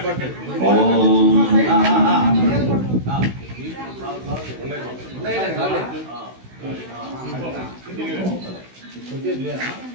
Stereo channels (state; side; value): late; left; 16 ms